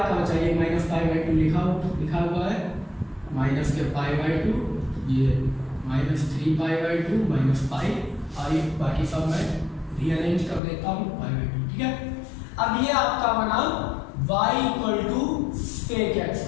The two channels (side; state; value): right; drops out; at 10.6 s